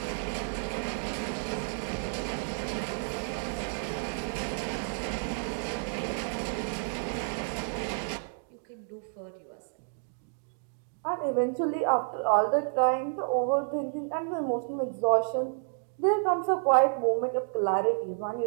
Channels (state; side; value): silent; left; digital silence